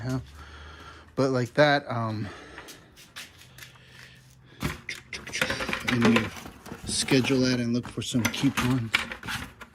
But like that, I need to schedule that and look for some coupons.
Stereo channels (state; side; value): identical; both; correlation 1.00